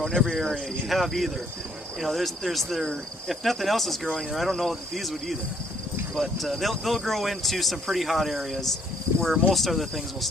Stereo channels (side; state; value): both; normal; correlation 0.66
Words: in every area you have either. You know, if nothing else is growing there, I don't know that these would either. But they'll grow into some pretty hot areas where most other things will